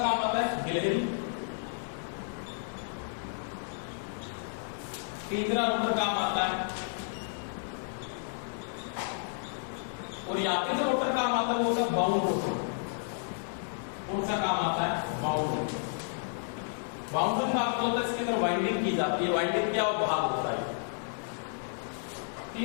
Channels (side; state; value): right; silent; digital silence